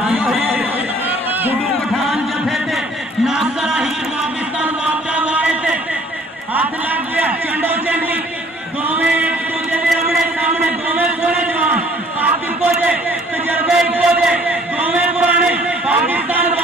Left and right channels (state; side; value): normal; both; correlation 0.57